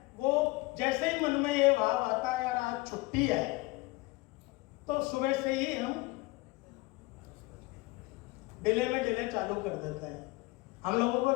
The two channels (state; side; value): quieter; right; 22.4 dB